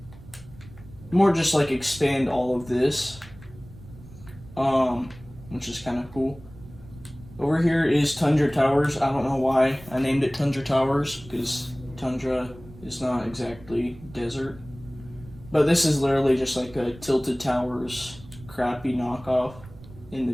more just like expand all of this, which is kind of cool. Over here is Tundra Towers. I don't know why I named it Tundra Towers, because tundra is not exactly desert, but this is literally just like a Tilted Towers crappy knockoff in the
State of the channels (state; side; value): noise; right; rumble, 19 dB below the sound